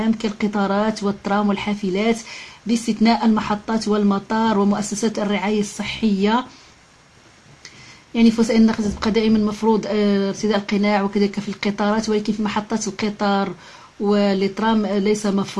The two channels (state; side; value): identical; both; correlation 1.00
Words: كالقطارات والترام والحافلات، باستثناء المحطات والمطار ومؤسسات الرعاية الصحية. يعني في وسائل النقل تبقى دائما مفروض ارتداء القناع، وكذلك في القطارات، ولكن في محطات القطار والترام ليس